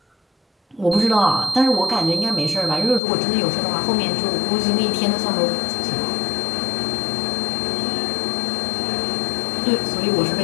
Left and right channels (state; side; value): drops out; right; at 3.0 s